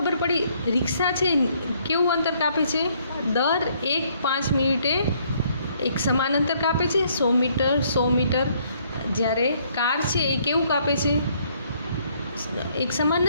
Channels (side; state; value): both; inverted; correlation -0.66